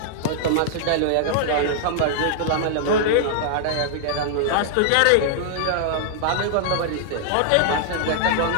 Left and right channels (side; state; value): both; different; correlation -0.01